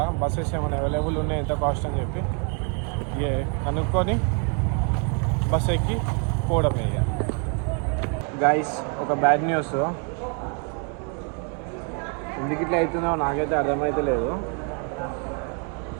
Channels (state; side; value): quieter; left; 37.6 dB